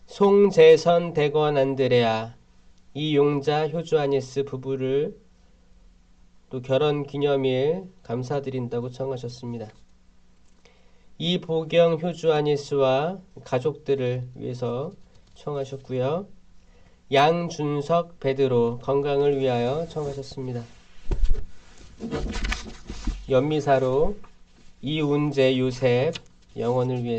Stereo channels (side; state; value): both; identical; correlation 1.00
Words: 송재선 대건 안드레아 이용자 효주 아니스 부부를 또 결혼 기념일 감사드린다고 청하셨습니다. 이보경 효주 아니스와 가족들을 위해서 청하셨고요. 양준석 베드로 건강을 위하여 청하셨습니다. 연미사로 이운재 요셉 영혼을